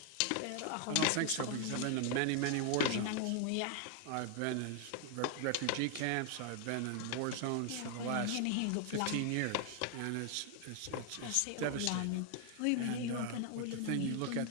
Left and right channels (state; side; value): different; both; correlation 0.00